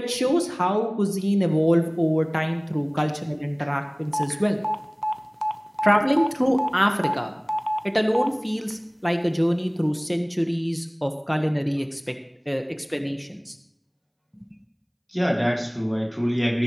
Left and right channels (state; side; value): identical; both; correlation 1.00